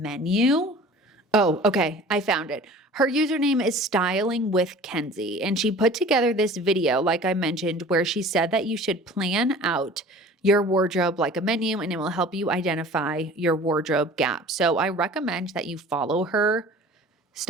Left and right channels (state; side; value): normal; both; correlation 0.44